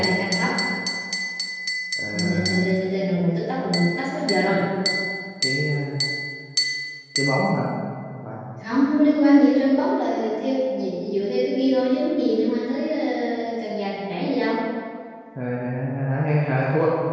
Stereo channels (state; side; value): identical; both; correlation 1.00